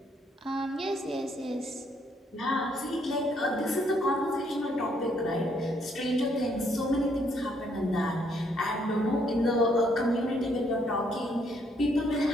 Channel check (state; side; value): normal; both; correlation 0.70